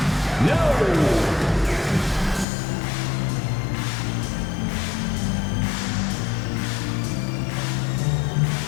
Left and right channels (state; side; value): drops out; right; at 2.5 s